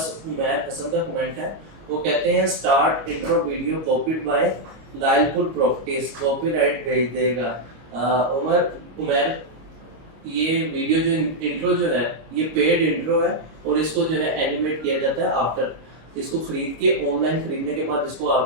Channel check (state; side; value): late; left; 26 ms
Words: عمیر حسن کا کمنٹ ہے, وہ کہتے ہیں start intro video copied by loyal پور پراپرٹیز, کاپی رائٹ بھیج دے گا. عمیر یہ ویڈیو جو انٹرو جو ہے یہ پیڈ انٹرو ہے اور اس کو جو ہے اینیمیٹ کیا جاتا ہے آفٹر. اس کو خرید کے آن لائن خریدنے کے بعد اس کو